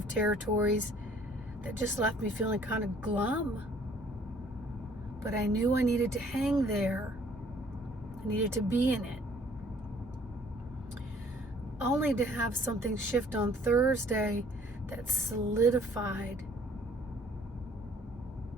territories that just left me feeling kind of glum. But I knew I needed to hang there. I needed to be in it. Only to have something shift on Thursday that solidified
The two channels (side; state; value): both; normal; correlation 0.58